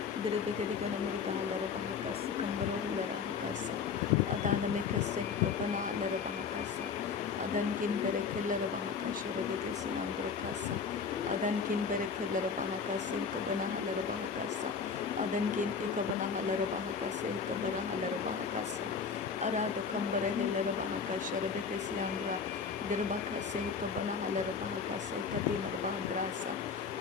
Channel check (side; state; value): right; quieter; 5.8 dB